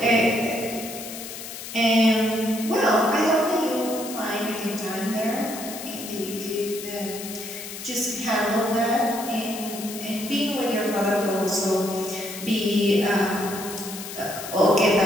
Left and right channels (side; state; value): left; noise; hiss, 10 dB below the sound